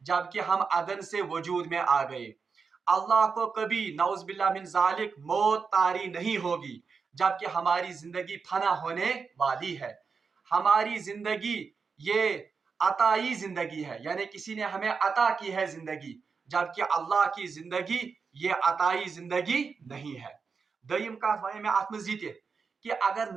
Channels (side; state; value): left; quieter; 5.3 dB